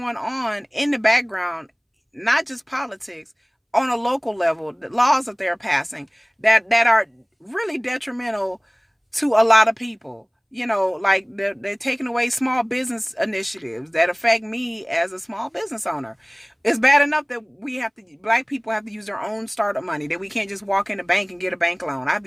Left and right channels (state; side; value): identical; both; correlation 1.00